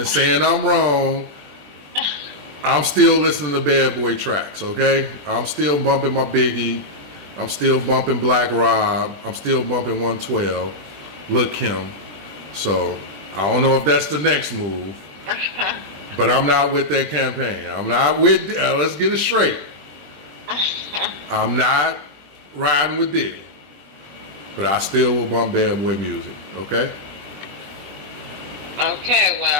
saying I'm wrong, I'm still listening to Bad Boy tracks, okay? I'm still bumping my Biggie. I'm still bumping Black Rob. I'm still bumping 112. Lil' Kim. So I don't know if that's the next move. But I'm not with that campaign. I'm not with, let's get it straight. I'm not riding with Diddy. But I still will bump Bad Boy music, okay? Okay,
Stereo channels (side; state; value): left; late; 20 ms